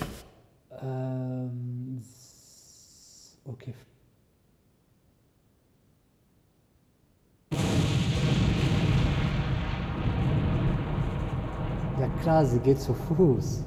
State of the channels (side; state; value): both; identical; correlation 1.00